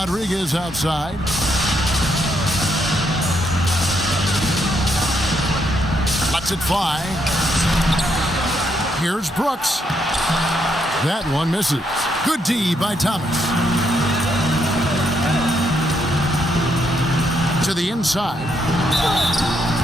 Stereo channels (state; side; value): normal; both; correlation 0.76